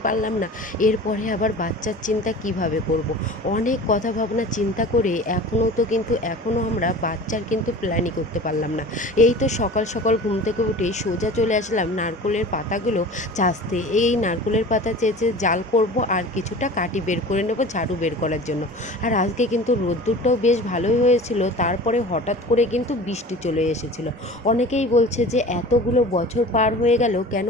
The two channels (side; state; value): both; normal; correlation 0.39